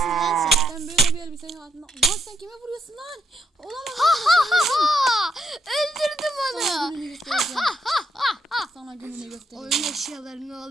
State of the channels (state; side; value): normal; both; correlation 0.75